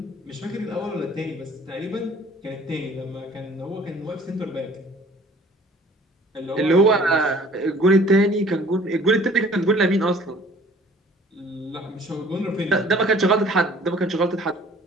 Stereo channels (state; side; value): normal; both; correlation 0.52